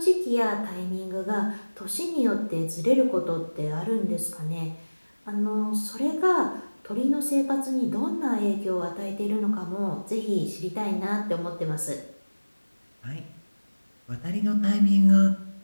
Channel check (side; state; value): both; inverted; correlation -1.00